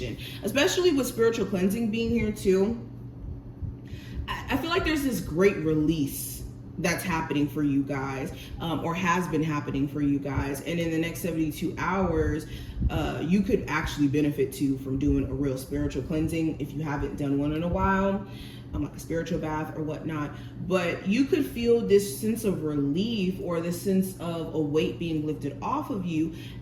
especially with spiritual cleansing being here too. I feel like there's this great release that's happening for you guys, or has been happening for you guys. And in the next 72 hours, you could actually benefit too from doing a real spiritual cleansing if you haven't done one in a while, like a spiritual bath or whatnot. But you could feel this sense of relief or this sense of a weight being lifted off of you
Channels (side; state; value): both; identical; correlation 1.00